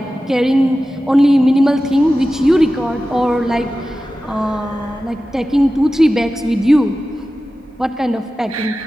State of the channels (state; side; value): normal; both; correlation 0.94